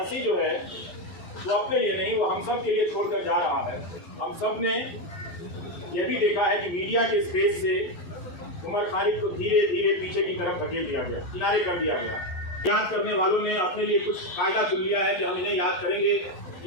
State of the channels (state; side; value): late; right; 12 ms